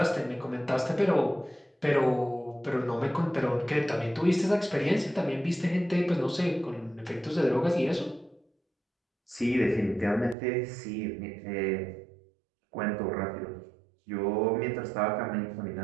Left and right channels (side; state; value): left; drops out; at 10.4 s